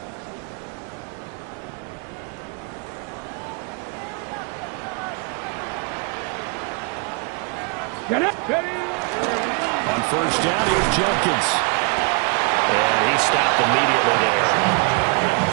Get up. On first down, here's Jenkins. And he stopped immediately there.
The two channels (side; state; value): left; quieter; 34.3 dB